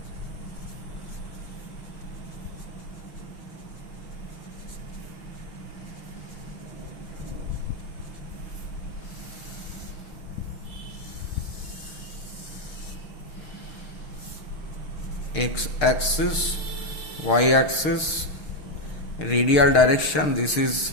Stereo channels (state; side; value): late; right; 6.6 ms